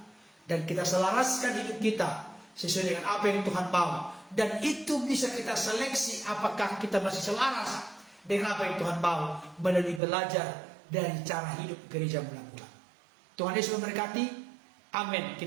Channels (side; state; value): left; drops out; at 10.0 s